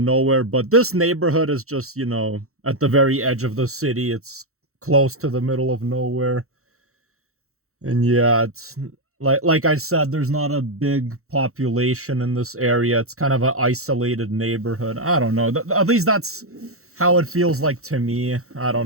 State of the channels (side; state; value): left; late; 0.64 ms